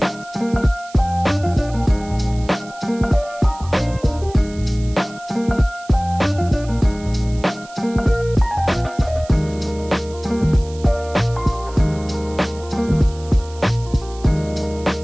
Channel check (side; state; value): right; noise; hiss, 21 dB below the sound